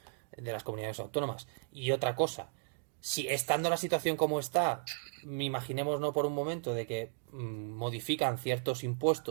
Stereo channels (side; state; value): left; silent; digital silence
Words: de las comunidades autónomas. Y otra cosa, si estando la situación como está, imaginemos no por un momento de que modifican ciertos